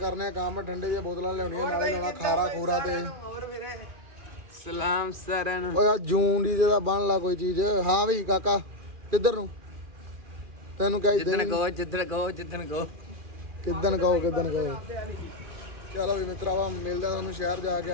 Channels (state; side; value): late; left; 2.4 ms